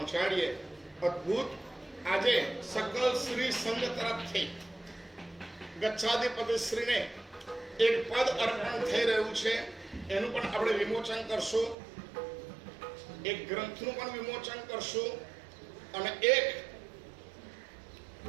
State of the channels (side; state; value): left; drops out; at 11.8 s